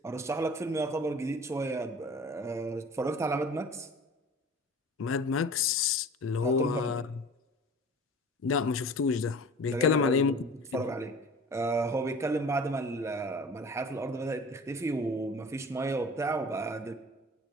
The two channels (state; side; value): normal; both; correlation 0.41